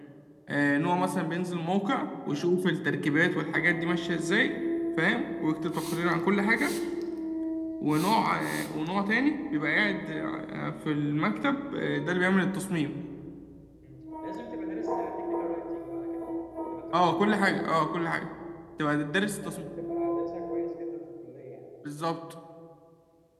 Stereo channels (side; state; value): both; identical; correlation 1.00